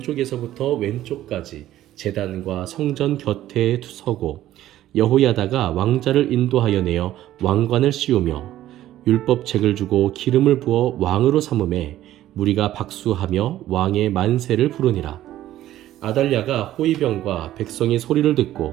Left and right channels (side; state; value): left; quieter; 13.6 dB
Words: 왼쪽까지 제단과 성전 곁에 서고 여호야다가 왕자를 인도하여 내어 왕관을 씌우며 율법책을 주고 기름을 부어 왕으로 삼음에 무리가 박수하며 왕의 만세를 부르니라. 아달랴가 호위병과 백성의 소리를